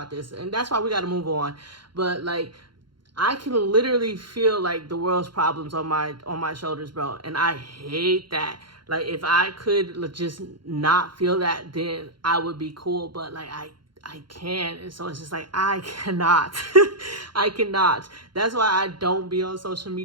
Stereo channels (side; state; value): left; late; 0.72 ms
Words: this. And that's why we got to move on. But like, I can literally feel like the world's problems on my shoulders, bro. And I hate that. Like, if I could just not feel that, then I would be cool. But like, I can't. And so it's just like, I cannot. I cannot. That's why I don't be on social